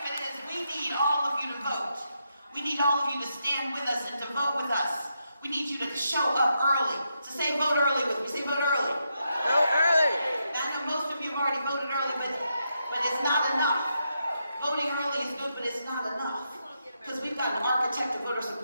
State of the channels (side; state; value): both; inverted; correlation -0.82